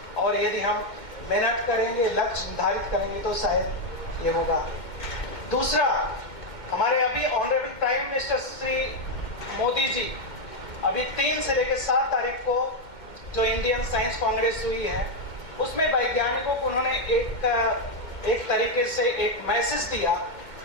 और यदि हम मेहनत करेंगे, लक्ष्य निर्धारित करेंगे तो शायद ये होगा। दूसरा, हमारे अभी honourable prime minister Shri Modi ji अभी 3 से लेकर 7 तारीख को जो इंडियन साइंस कांग्रेस हुई है, उसमें वैज्ञानिकों को उन्होंने एक तरीके से एक मैसेज दिया,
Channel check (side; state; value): right; late; 2.1 ms